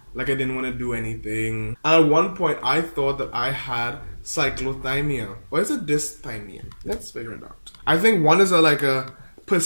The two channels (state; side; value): inverted; both; correlation -1.00